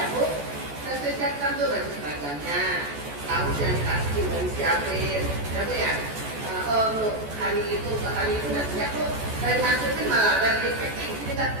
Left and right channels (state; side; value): late; left; 14 ms